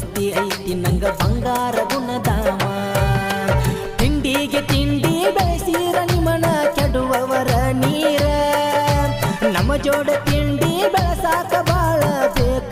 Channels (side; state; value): both; identical; correlation 1.00